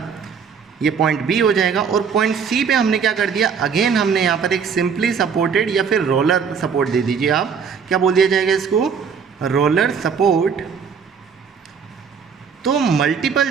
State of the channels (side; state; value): left; quieter; 6.5 dB